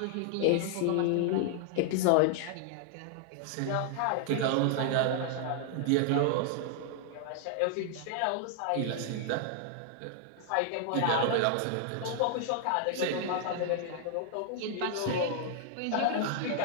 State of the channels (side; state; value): both; different; correlation 0.00